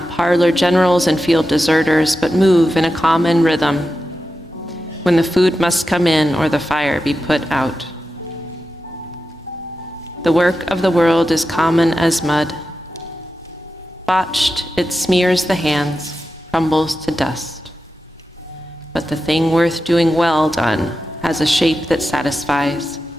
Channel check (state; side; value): normal; both; correlation 0.91